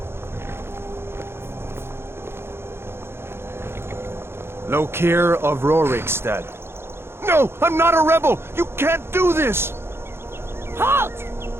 Lokir of Rorikstead. No, I'm not a rebel! You can't do this! Halt!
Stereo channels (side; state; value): left; late; 0.12 ms